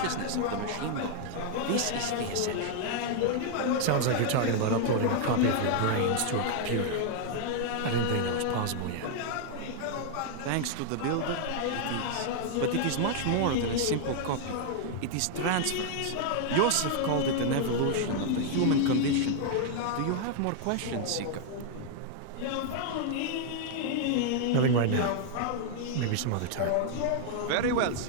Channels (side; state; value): both; different; correlation 0.00